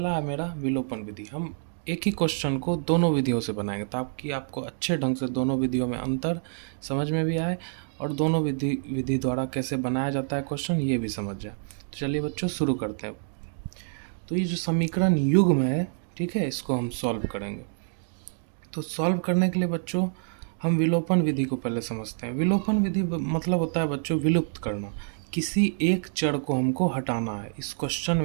है मेरा विलोपन विधि। हम एक ही क्वेश्चन को दोनों विधियों से बनाएंगे ताकि आपको अच्छे ढंग से दोनों विधियों में अंतर समझ में भी आए और दोनों विधि द्वारा कैसे बनाया जाता है क्वेश्चन ये भी समझ जाए। तो चलिए बच्चों शुरू करते हैं। तो ये जो समीकरण युग्म है, ठीक है, इसको हम सॉल्व करेंगे। तो सॉल्व करने के लिए बच्चों हम विलोपन विधि को पहले समझते हैं। विलोपन विधि मतलब होता है बच्चों विलुप्त करना। किसी एक चर को हमको हटाना है, इस क्वेश्चन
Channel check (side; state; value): left; silent; digital silence